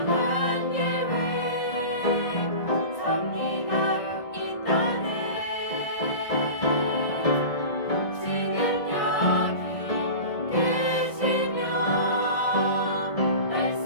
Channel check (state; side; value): late; right; 1.6 ms